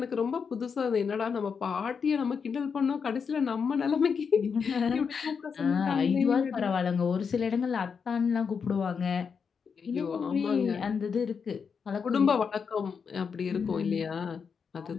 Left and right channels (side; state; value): right; quieter; 6.1 dB